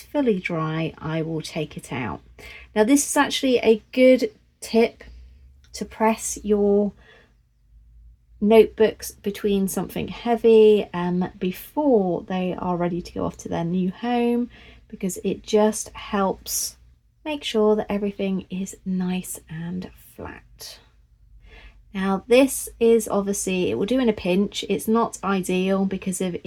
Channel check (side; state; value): both; identical; correlation 1.00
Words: fully dry, I will take it out. Now this is actually a good tip to press your notebooks between something heavy before they are ready to go off to their new home, because it just helps make sure that everything is nice and flat. Now this is obviously, it will do in a pinch. It's not ideal because of